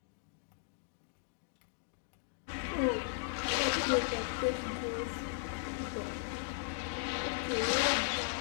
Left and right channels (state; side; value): silent; right; digital silence